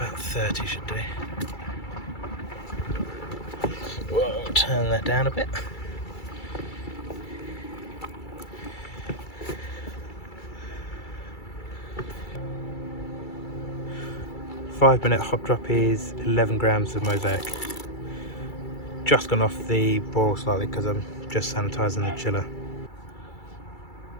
30 should do. Whoa, turn that down a bit. Five-minute hop drop is 11 grams of Mosaic. Just gone off the boil slightly because I'm just sanitizing the chiller.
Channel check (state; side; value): late; right; 2.3 ms